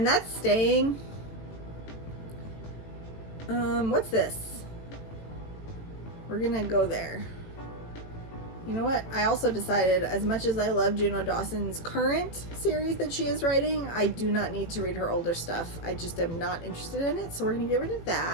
that's staying. What's this? We're gonna go there. You know what? I also decided, as much as I love Juno Dawson's current series that she is writing, I do not need to read her older stuff. I just am not interested in it, so we're gonna get rid of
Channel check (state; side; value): late; right; 18 ms